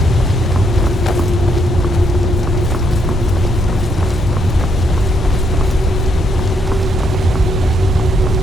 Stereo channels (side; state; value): both; normal; correlation 0.75